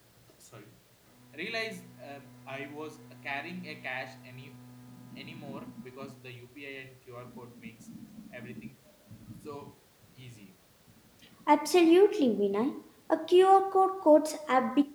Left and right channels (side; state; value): both; identical; correlation 1.00